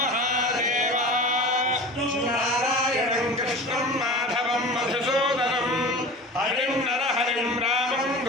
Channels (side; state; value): both; normal; correlation 0.35